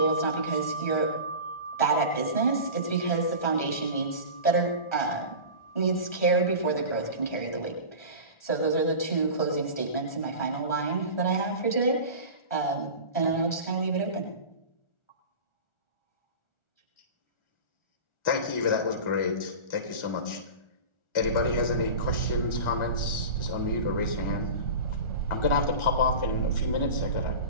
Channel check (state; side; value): late; right; 1.4 ms